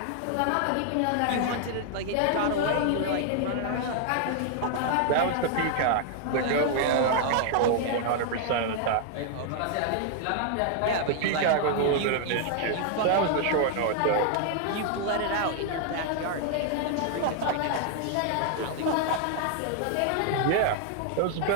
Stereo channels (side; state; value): both; different; correlation 0.00